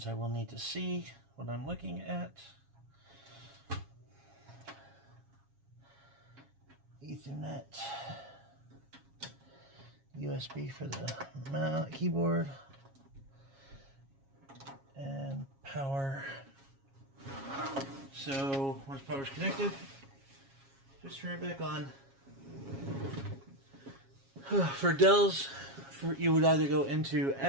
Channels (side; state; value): left; late; 7.3 ms